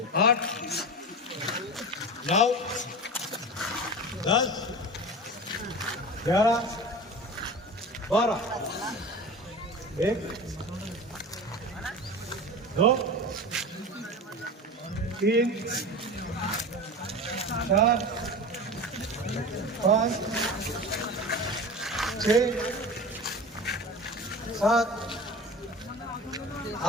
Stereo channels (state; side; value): normal; both; correlation 0.31